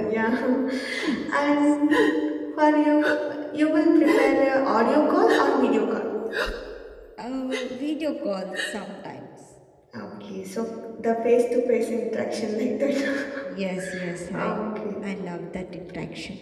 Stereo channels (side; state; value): both; identical; correlation 1.00